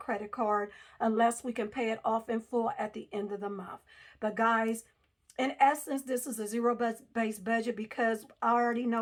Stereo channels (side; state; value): both; identical; correlation 1.00